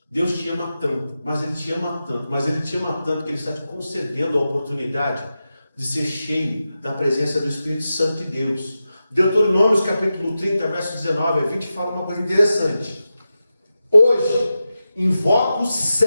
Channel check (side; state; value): both; inverted; correlation -0.91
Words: Deus te ama tanto, mas Ele te ama tanto, mas Ele te ama tanto que Ele está te concedendo a oportunidade de ser cheio da presença do Espírito Santo de Deus. Deuteronômio capítulo 30, verso 19 a 20 fala uma coisa interessante. Hoje invoco os